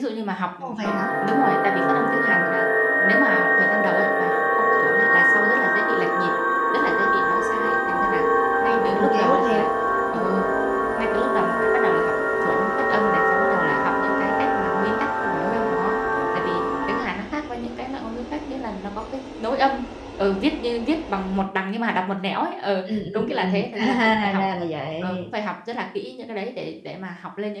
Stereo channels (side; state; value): both; identical; correlation 1.00